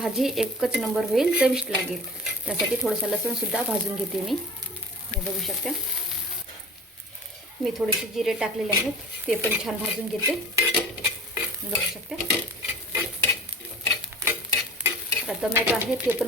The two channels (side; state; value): both; normal; correlation 0.39